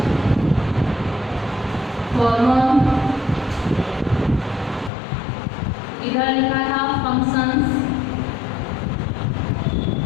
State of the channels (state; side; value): drops out; right; at 4.9 s